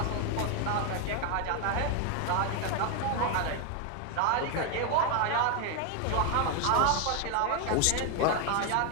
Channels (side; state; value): both; different; correlation 0.01